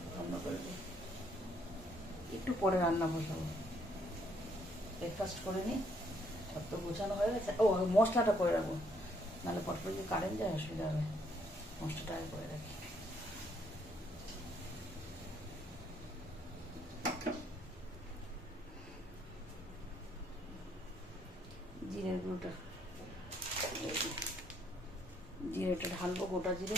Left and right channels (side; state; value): both; normal; correlation 0.69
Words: বন্ধ করে দিই, একটু পরে রান্না বসাবো। ব্রেকফাস্ট করে নিই, সব তো গোছানো হয়ে গেছে। ও মশলাটা করে রাখবো, নাহলে পটপট যদি কারেন্ট যায় অসুবিধা হবে। মশলাটা আগে করে রাখি। জিরের গুঁড়োটা, জিরেটা ঢালবো, গোটা জিরে।